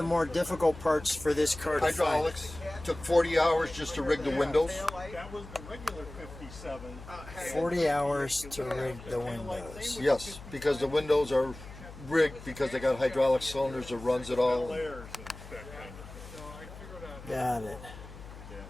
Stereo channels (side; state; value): left; noise; hum, 15 dB below the sound